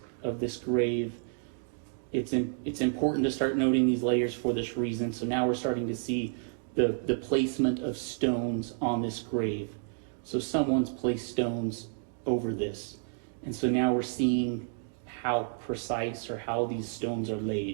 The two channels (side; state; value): left; silent; digital silence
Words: grave, it's important to start noting these layers for this reason. So now we're starting to see the placement of stones on this grave. So someone's placed stones over this. And so now we're seeing how precise or how these stones are